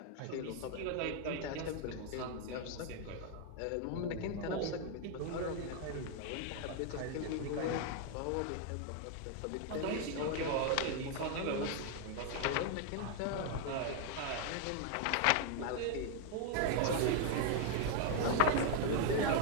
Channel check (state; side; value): different; both; correlation 0.00